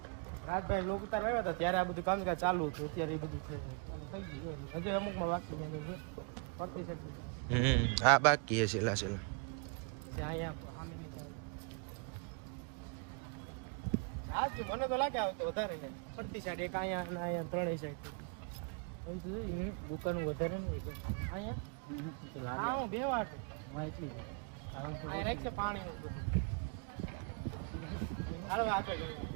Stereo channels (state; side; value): quieter; left; 35.8 dB